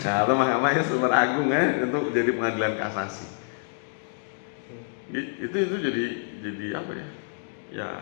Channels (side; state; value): right; silent; digital silence